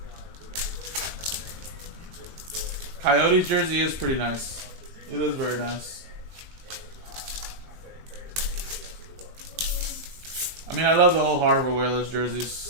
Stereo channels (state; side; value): late; left; 20 ms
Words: Coyotes jersey is pretty nice. It is very nice. I mean, I love the old Harvard Whalers